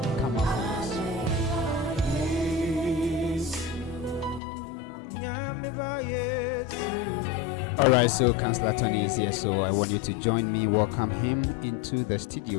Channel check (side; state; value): right; drops out; at 4.4 s